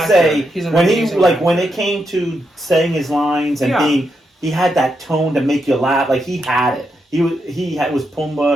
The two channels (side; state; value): both; normal; correlation 0.83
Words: say He's an when amazing when actor. it came to saying his lines and Yeah. he had that tone to make you laugh. Like he had it. Was